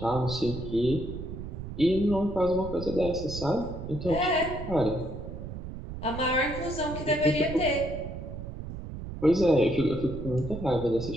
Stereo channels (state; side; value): noise; right; rumble, 9 dB below the sound